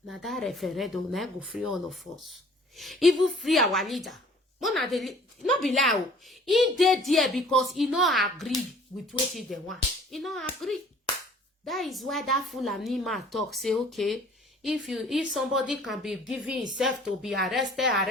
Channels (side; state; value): both; normal; correlation 0.52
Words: Now that referendum, now go free all of us. Even free our leader. Not be lie. He did there because he not agree with what they want. He not agree. That is why that Fulani man talk, say, okay, if somebody can be giving himself to be arrested,